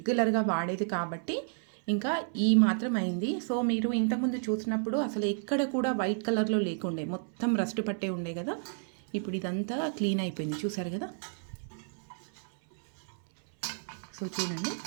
వాడేది కాబట్టి ఇంకా ఈ మాత్రం అయింది. సో మీరు ఇంతకుముందు చూసినప్పుడు అసలు ఎక్కడ కూడా వైట్ కలర్లో లేకుండే, మొత్తం రస్ట్ పట్టే ఉండే కదా. ఇప్పుడు ఇదంతా క్లీన్ అయిపోయింది, చూసారు కదా. సో చూడండి.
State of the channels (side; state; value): left; silent; 57 dB below the other